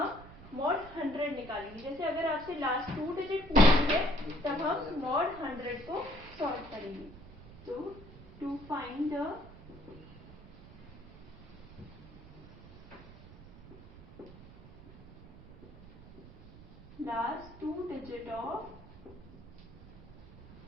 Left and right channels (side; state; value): right; noise; rumble, 18 dB below the sound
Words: मॉड 100 निकालेंगे। जैसे अगर आपसे लास्ट 2 डिजिट पूछी है तब हम मॉड 100 को सॉल्व करेंगे। तो to find the last 2 digit of